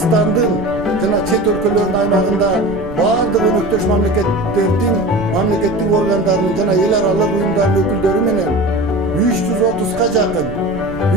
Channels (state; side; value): noise; right; rumble, 16 dB below the sound